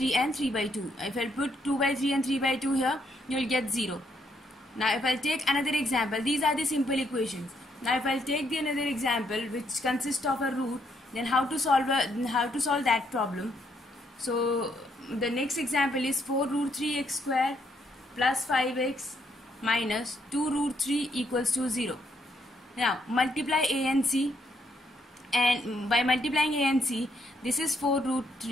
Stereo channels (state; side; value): normal; both; correlation 0.73